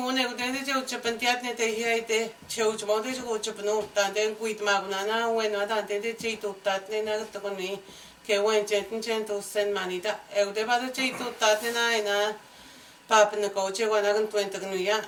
then the Japantiat, they hear the church mother to go to Pano, and then quit Magunana, when not attended to that, then I took on me, Kawan Jentin to send money. Eldeba the cheat to Tatina, Papa and the coach, 120 New York.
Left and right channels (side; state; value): both; identical; correlation 1.00